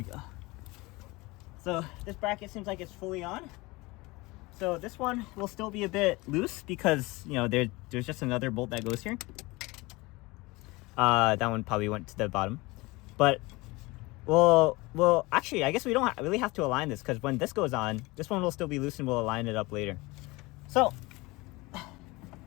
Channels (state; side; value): quieter; right; 22.9 dB